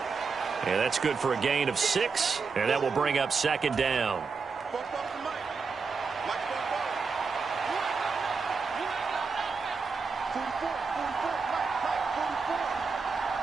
And that's good for a gain of 6, and that will bring up 2nd down.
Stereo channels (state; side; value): quieter; left; 4.9 dB